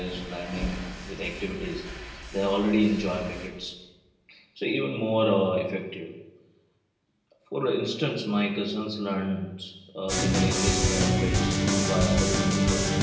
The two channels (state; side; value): identical; both; correlation 1.00